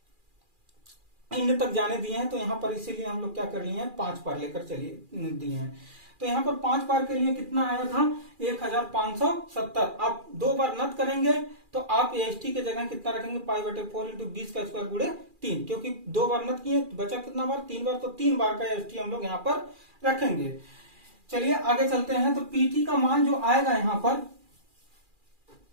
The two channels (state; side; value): late; left; 2.4 ms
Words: इंड तक जाने दिए हैं। तो यहां पर इसीलिए हम लोग क्या कर लिए हैं, 5 बार लेकर चलिए दिए हैं। तो यहां पर 5 बार के लिए कितना आया था, 1570। आप 2 बार नत करेंगे तो आप एसटी के जगह कितना रखेंगे, पाई बटे 4 इंटू 20 का स्क्वायर गुणे 3। क्योंकि 2 बार नत किए, बचा कितना बार, 3 बार। तो 3 बार का एसटी हम लोग यहां पर रखेंगे। चलिए आगे चलते हैं। तो पीटी का मान जो आएगा यहां